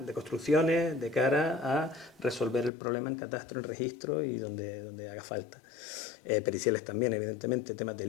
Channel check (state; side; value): drops out; right; at 2.7 s